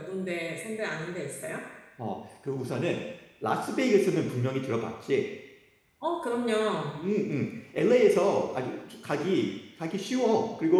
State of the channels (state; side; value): identical; both; correlation 1.00